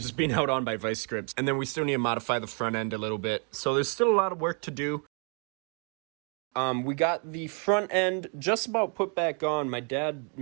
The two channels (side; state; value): left; quieter; 38.3 dB